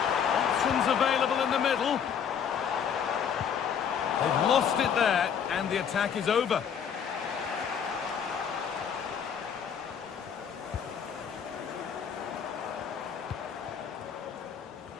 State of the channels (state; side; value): quieter; right; 7.7 dB